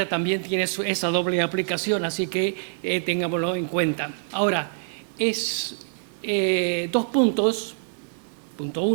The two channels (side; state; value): left; silent; 62 dB below the other